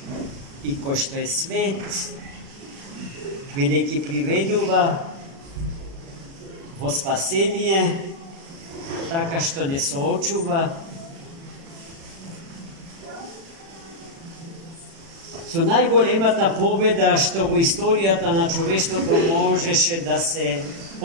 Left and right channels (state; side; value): late; left; 36 ms